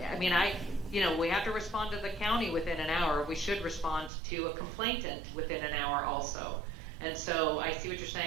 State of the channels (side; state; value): left; drops out; at 4.1 s